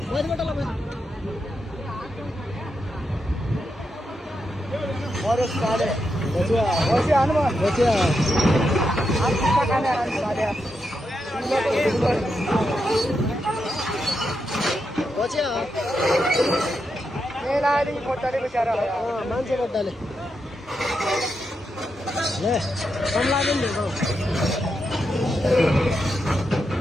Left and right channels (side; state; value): both; normal; correlation 0.85